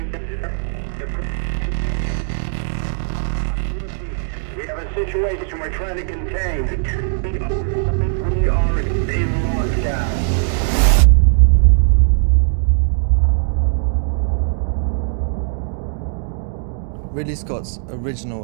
We have a situation we're trying to contain. We are in lockdown. Ridley Scott's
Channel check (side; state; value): left; silent; digital silence